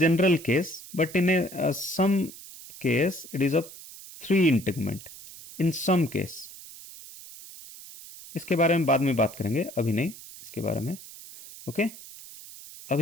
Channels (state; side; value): noise; right; hiss, 16 dB below the sound